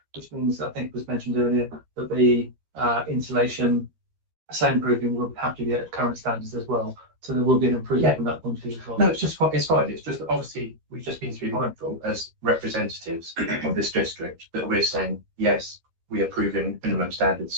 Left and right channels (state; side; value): late; left; 13 ms